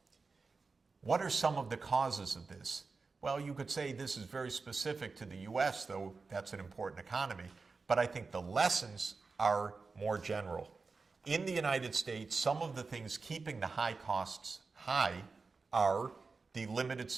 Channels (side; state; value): left; quieter; 4.3 dB